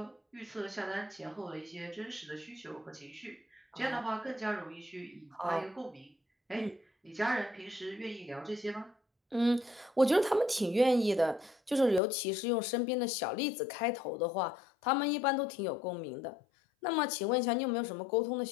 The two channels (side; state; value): right; drops out; at 12.0 s